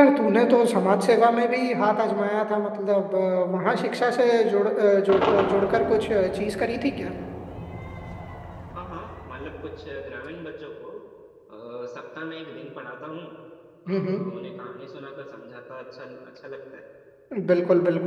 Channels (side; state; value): both; identical; correlation 1.00